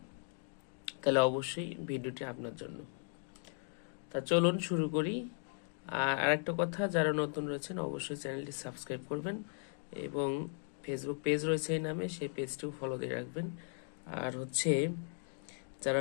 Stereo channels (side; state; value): right; silent; 53 dB below the other